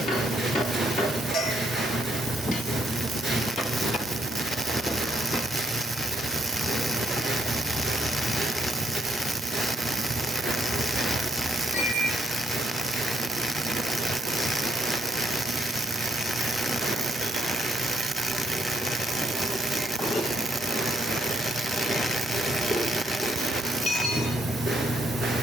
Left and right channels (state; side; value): normal; both; correlation 0.67